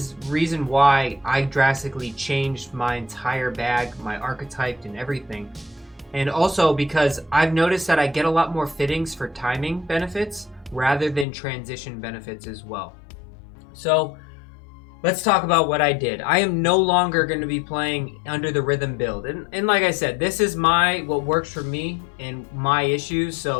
reason why I drastically changed my entire bag, my archetype and everything. And also because I've noticed that I get a lot more fittings for timing benefits rather than transition benefits as well. So let's talk about what I did. I am no longer going to be playing under the rhythm build. And like I said, this is what works for me and my issues.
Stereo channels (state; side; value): drops out; right; at 11.2 s